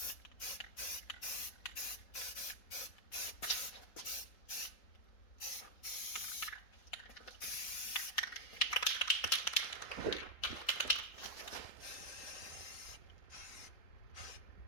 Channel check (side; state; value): right; late; 3.7 ms